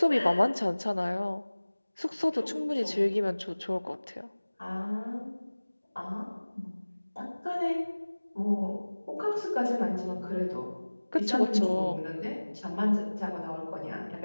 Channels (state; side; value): inverted; both; correlation -1.00